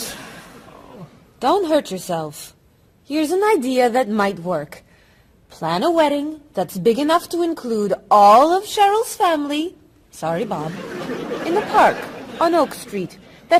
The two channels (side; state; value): both; identical; correlation 1.00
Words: Don't hurt yourself. Here's an idea that might work. Plan a wedding that's big enough to include all of Cheryl's family, sorry Bob, in the park on Oak Street that